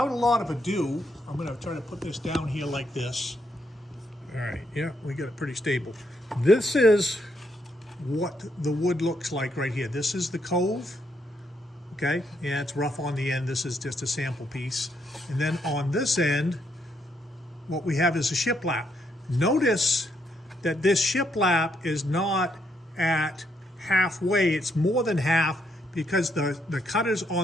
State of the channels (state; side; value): normal; both; correlation 0.76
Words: a lot of ado, I'm going to try to put this down here like this. All right, yeah, we got it pretty stable. This is what the wood looks like right here. This is the cove. Okay, yeah, it's rough on the end. This is just a sample piece. And then on this end, what we have is a shiplap. Notice that this shiplap is not at halfway. It's more than half, because the cutters